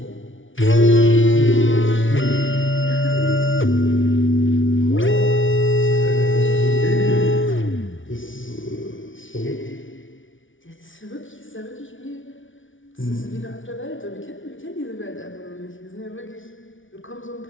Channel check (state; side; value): late; right; 0.57 ms